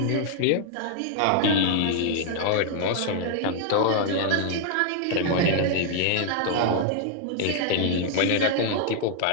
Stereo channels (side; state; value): both; different; correlation 0.00